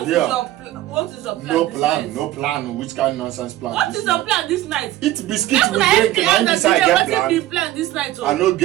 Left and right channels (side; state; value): left; quieter; 14.7 dB